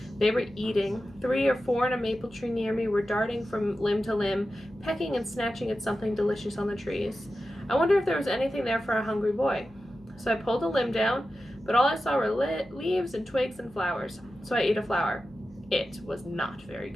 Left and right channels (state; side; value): noise; left; hum, 28 dB below the sound